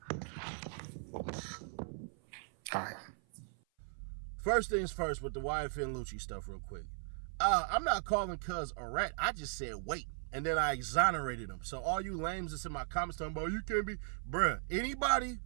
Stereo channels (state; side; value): silent; left; 53 dB below the other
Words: All right. First things first with the YFN Lucci stuff real quick. I'm not calling Cuz a rat. I just said wait. And then I exonerated him. So all you lames that's in my comments talking about you can't be, bruh, anybody